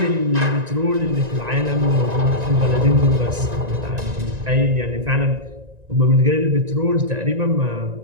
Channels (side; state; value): left; late; 1.9 ms